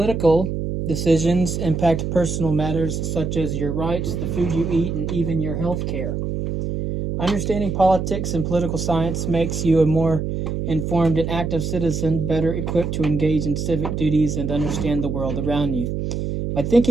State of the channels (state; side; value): noise; right; hum, 3 dB below the sound